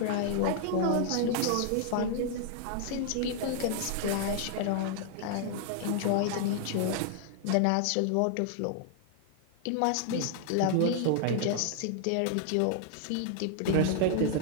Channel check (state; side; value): different; both; correlation -0.01